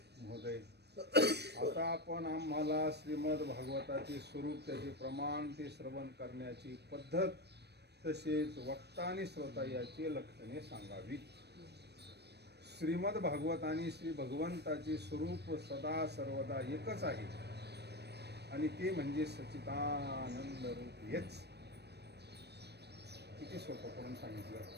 महोदय, आता आपण आम्हाला श्रीमद भागवताचे स्वरूप, त्याचे प्रमाण, ते श्रवण करण्याची पद्धत, तसेच वक्ता आणि श्रोता याची लक्षणे सांगावी. श्रीमद भागवत आणि श्री भगवंताचे स्वरूप सदा सर्वदा एकच आहे आणि ते म्हणजे सच्चिदानंद रूप हेच. किती सोपं करून सांगितलं.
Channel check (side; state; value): left; late; 0.48 ms